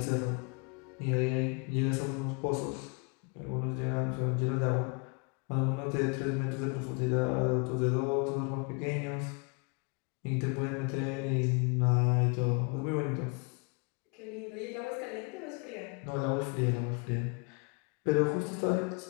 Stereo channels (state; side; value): quieter; right; 32.9 dB